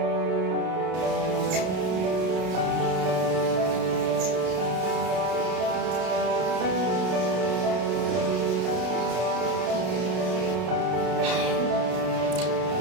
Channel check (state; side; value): late; left; 32 ms